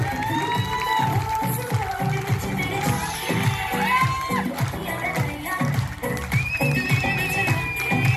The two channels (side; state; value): both; identical; correlation 1.00